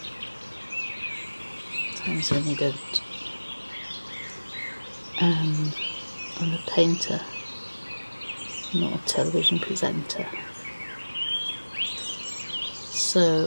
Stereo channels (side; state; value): both; inverted; correlation -1.00